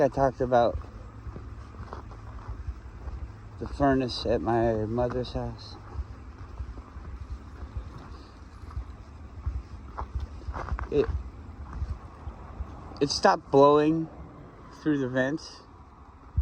I talked about the furnace at my mother's house. It stopped blowing through the vents,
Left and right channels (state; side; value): identical; both; correlation 1.00